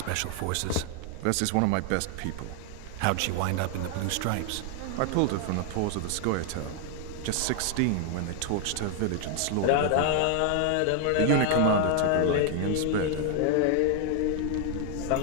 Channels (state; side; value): different; both; correlation 0.00